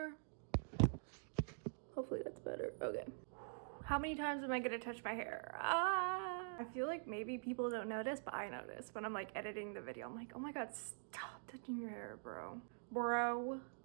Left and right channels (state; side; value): silent; left; digital silence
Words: Hopefully that's better. Okay. How many times am I gonna touch my hair? I feel like maybe people don't notice, but I notice when I'm like editing the video. I'm like, oh my god, stop touching your hair, bro. Bro,